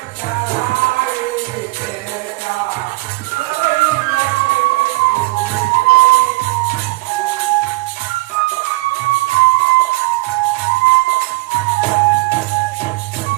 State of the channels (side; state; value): left; quieter; 23.4 dB